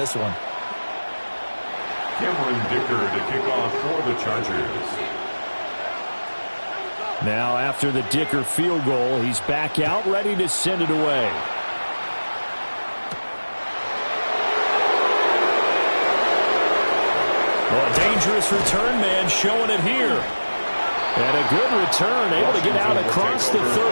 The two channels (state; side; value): inverted; both; correlation -1.00